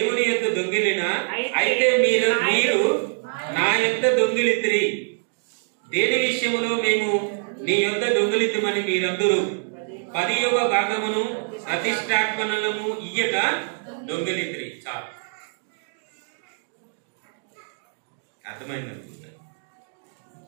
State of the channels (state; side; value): silent; left; digital silence